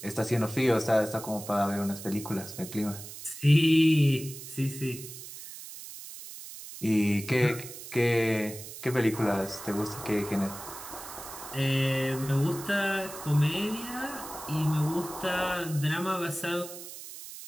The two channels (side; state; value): right; noise; hiss, 12 dB below the sound